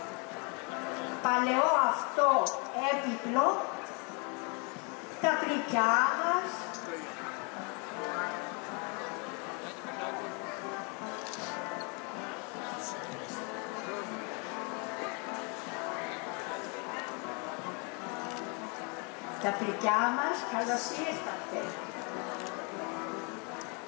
παλαιό αυτό έπιπλο, τα πλυκιά μας, τα πλυκιά μας, καλώς ήρθατε.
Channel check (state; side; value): quieter; right; 33.8 dB